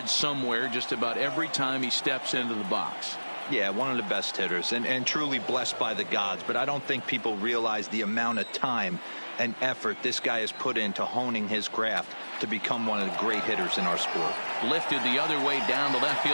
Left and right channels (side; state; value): both; inverted; correlation -1.00